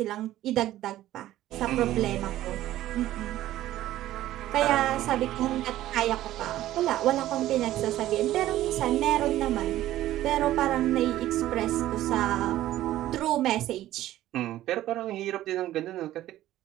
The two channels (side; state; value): left; quieter; 14.2 dB